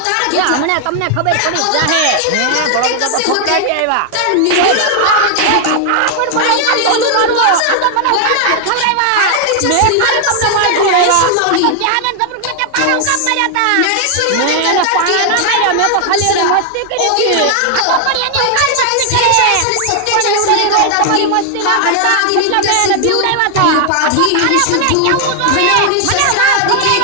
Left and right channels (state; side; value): different; both; correlation 0.00